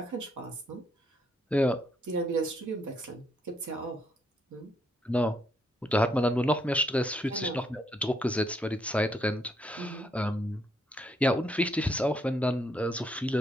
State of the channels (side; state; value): both; normal; correlation 0.73